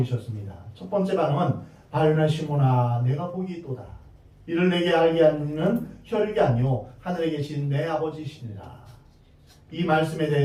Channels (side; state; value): both; identical; correlation 1.00